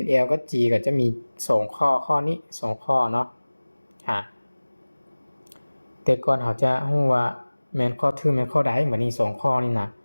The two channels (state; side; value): inverted; both; correlation -1.00